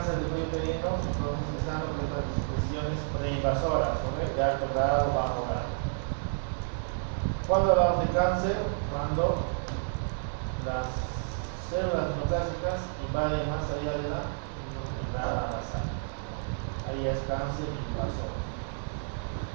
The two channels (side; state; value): left; silent; 58 dB below the other